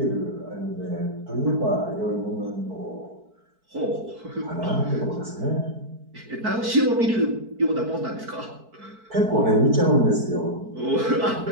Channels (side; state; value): left; late; 4.5 ms